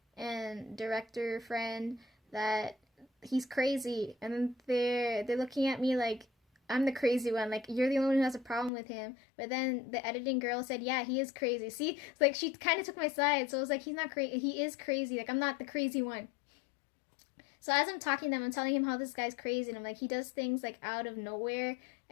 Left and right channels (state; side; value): drops out; right; at 8.7 s